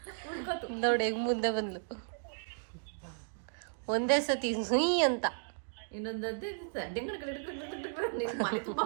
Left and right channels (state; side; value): silent; left; digital silence